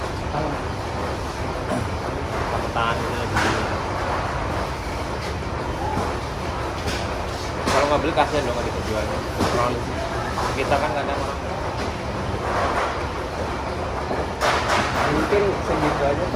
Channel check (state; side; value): identical; both; correlation 1.00